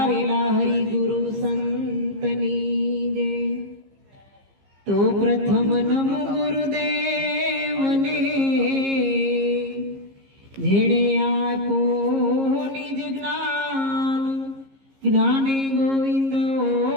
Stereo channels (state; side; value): late; left; 15 ms